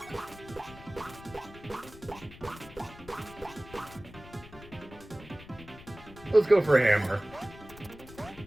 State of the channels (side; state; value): left; noise; rumble, 18 dB below the sound